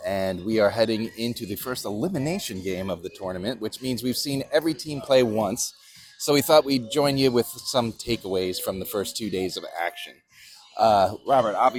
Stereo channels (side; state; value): both; identical; correlation 1.00